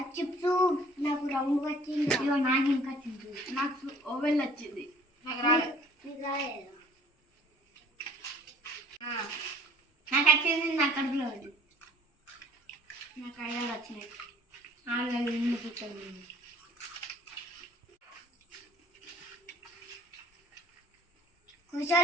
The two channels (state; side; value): normal; both; correlation 0.54